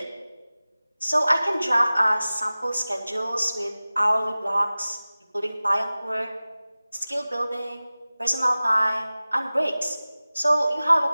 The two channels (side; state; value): both; inverted; correlation -0.98